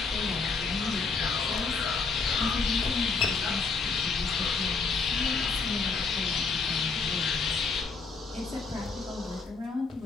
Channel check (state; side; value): quieter; right; 4.7 dB